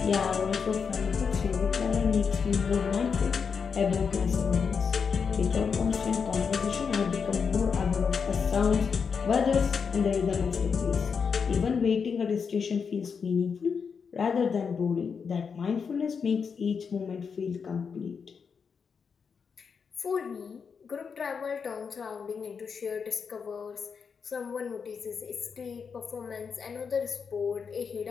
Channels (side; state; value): right; quieter; 6.0 dB